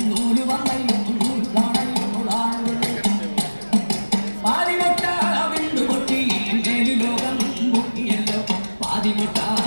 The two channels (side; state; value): both; inverted; correlation -1.00